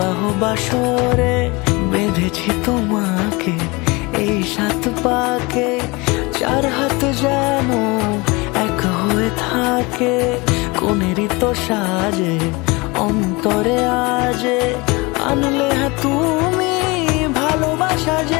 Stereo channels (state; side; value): quieter; right; 25.3 dB